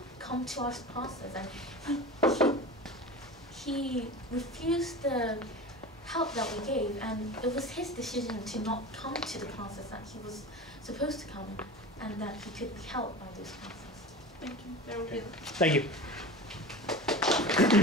come to our classes, and he refused the help that we gave, and it was his decision to not come to the classes that he was supposed to come, and that he could be helped by those classes. Thank you. That will be it. Thank you.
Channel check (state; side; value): normal; both; correlation 0.32